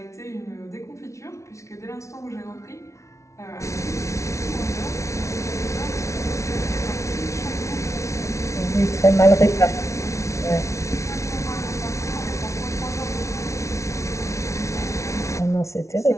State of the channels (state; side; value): late; right; 0.14 ms